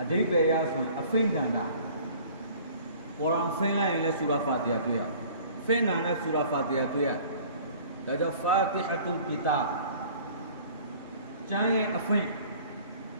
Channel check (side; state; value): both; inverted; correlation -0.49